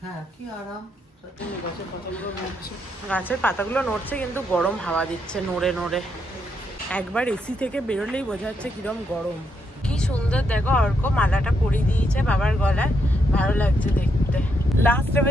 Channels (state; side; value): normal; both; correlation 0.78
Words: হ্যাঁ কি আরাম। গাছের পাতাগুলো নড়ছে, কিন্তু গরম হাওয়া দিচ্ছে নড়ে নড়ে। একবার এসি থেকে বেরোলেই বোঝা যাচ্ছে কিরম গরম। কি সুন্দর দেখো, অর্ক মালাটা পরিয়ে দিয়েছে বাবার গলায়, ভালো লাগছে দেখতে। লাস্টে